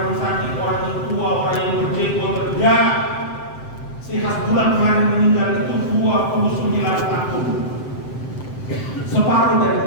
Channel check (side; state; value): right; late; 7.7 ms